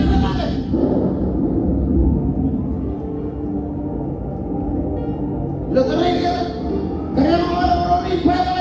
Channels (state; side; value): identical; both; correlation 1.00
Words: lawan. Lo keren kan? Keren orang ini banyak